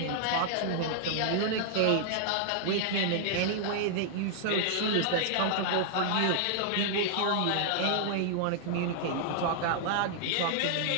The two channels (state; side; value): different; both; correlation -0.01